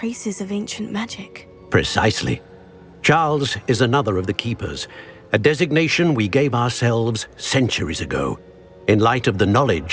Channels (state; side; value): identical; both; correlation 1.00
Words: of ancient magic. Precisely. Charles is another of the Keepers, a designation we gave ourselves centuries ago, in light of the